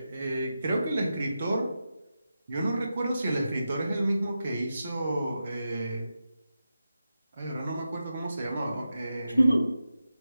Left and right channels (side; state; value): both; inverted; correlation -0.90